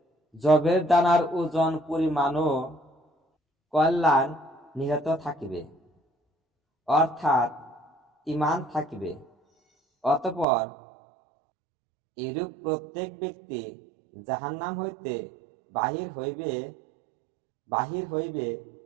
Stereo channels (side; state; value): left; drops out; at 10.5 s